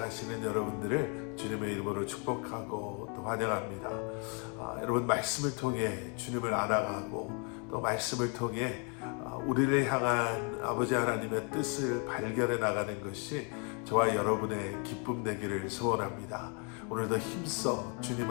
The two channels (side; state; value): right; quieter; 36.4 dB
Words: 여러분들을 주님의 이름으로 축복하고 또 환영합니다. 여러분, 말씀을 통해 주님을 알아가고 또 말씀을 통해 우리를 향한 아버지 하나님의 뜻을 발견해 나가는 것이 저와 여러분의 기쁨 되기를 소원합니다. 오늘도 힘써